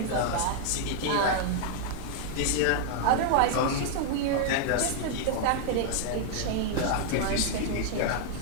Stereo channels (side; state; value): both; different; correlation 0.00